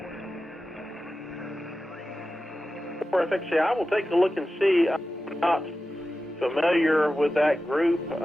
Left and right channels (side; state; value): both; normal; correlation 0.93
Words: Perfect. I will take a look and see. I'm not familiar with that group.